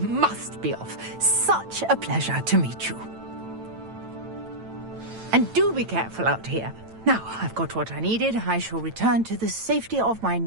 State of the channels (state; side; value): late; left; 9.0 ms